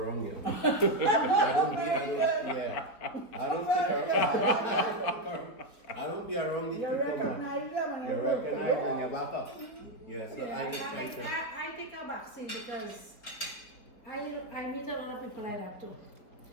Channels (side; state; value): right; late; 4.6 ms